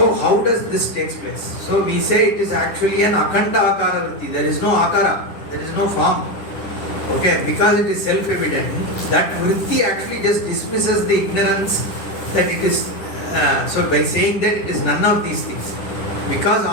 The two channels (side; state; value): right; late; 10 ms